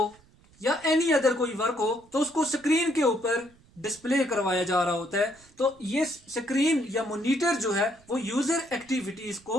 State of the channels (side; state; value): right; noise; rumble, 29 dB below the sound